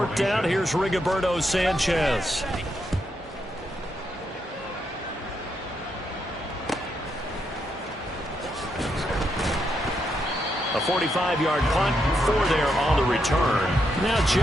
down, here's Rigoberto Sanchez. A 45-yard punt, 4 there on the return. Now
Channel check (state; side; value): normal; both; correlation 0.80